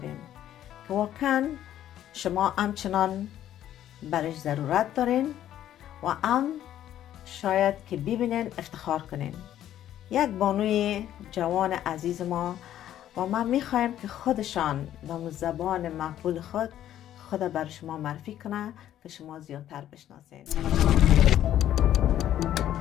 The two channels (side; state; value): right; quieter; 11.7 dB